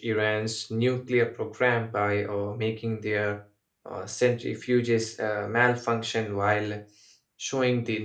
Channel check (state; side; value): identical; both; correlation 1.00